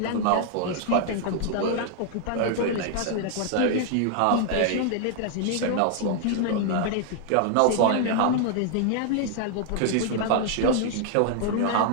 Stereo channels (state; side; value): different; both; correlation 0.00